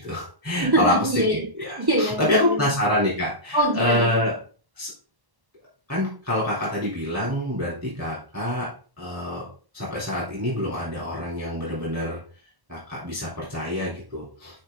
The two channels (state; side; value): late; left; 1.1 ms